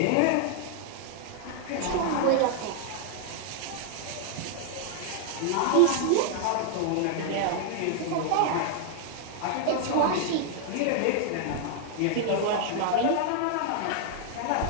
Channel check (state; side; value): different; both; correlation 0.00